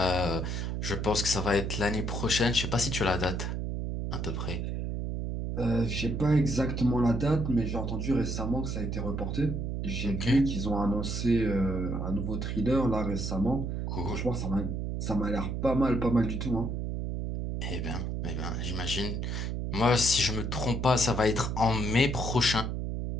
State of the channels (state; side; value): noise; right; hum, 2 dB below the sound